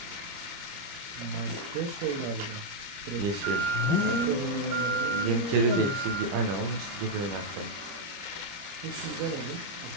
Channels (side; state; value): left; late; 30 ms